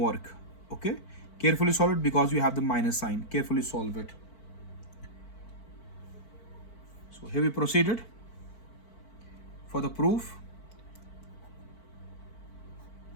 Okay, carefully solve it because you have the minus sign. Carefully solve it. So here we proceeded for the proof.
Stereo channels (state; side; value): late; right; 4.5 ms